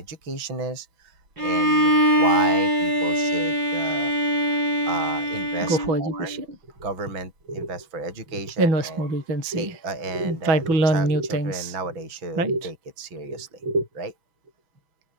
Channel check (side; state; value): left; late; 6.2 ms